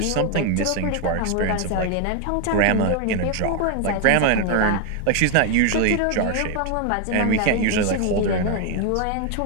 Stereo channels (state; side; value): different; both; correlation 0.01